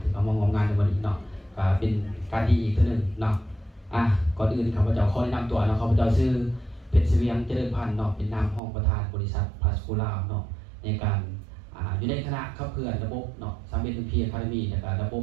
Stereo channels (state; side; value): drops out; left; at 8.6 s